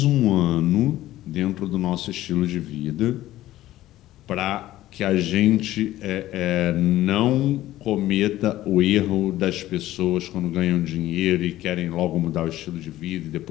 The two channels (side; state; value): right; quieter; 14.9 dB